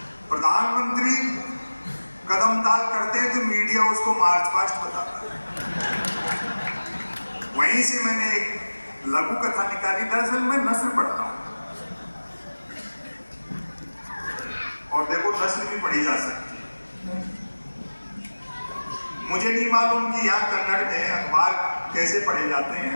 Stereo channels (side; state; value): both; inverted; correlation -1.00